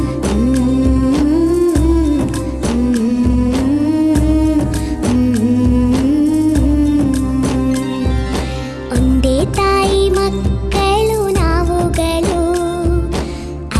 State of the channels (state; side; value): identical; both; correlation 1.00